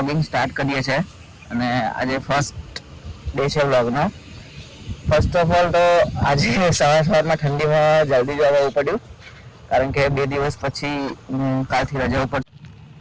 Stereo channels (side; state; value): both; identical; correlation 1.00